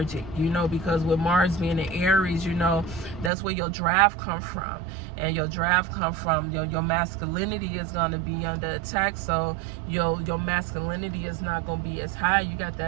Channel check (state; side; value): drops out; left; at 3.3 s